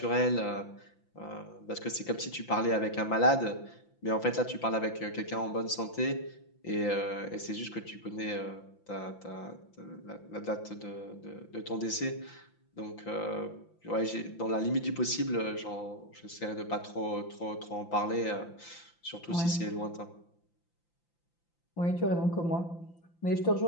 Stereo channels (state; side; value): late; right; 5.9 ms